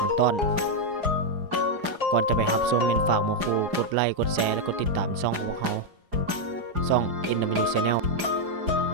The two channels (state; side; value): late; left; 4.9 ms